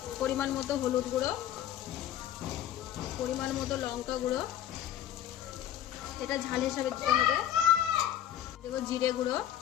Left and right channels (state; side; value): quieter; right; 11.2 dB